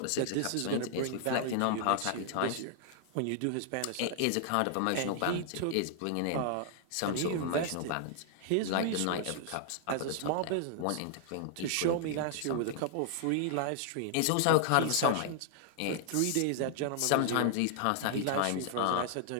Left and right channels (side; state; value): both; different; correlation 0.00